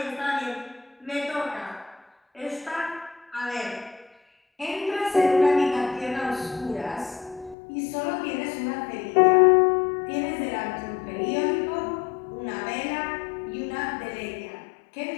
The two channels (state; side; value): drops out; right; at 7.6 s